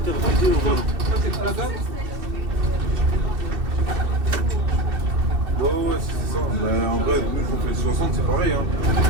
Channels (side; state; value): left; late; 2.7 ms